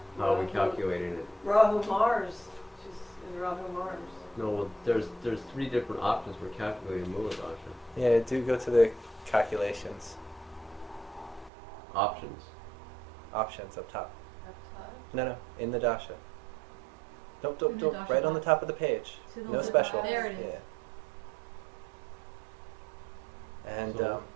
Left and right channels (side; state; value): left; drops out; at 11.5 s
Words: How are we calculating it? Rahu Mars. She's in Rahu Mars. No, well, there's 3 different options for calculating Muladasha. Yeah, do go to the calculations. Options. Options up top. Up top? No, in the dasha. Don't, In the dasha right on the box. top of the page. To the No left. special. There it is. Yeah. And So-